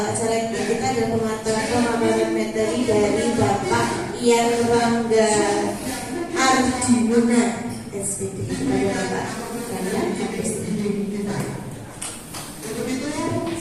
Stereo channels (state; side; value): identical; both; correlation 1.00